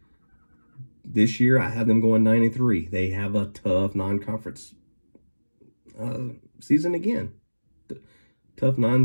This year, I have them going 9-3. They have a tough non-conference season again. Tough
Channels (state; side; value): inverted; both; correlation -1.00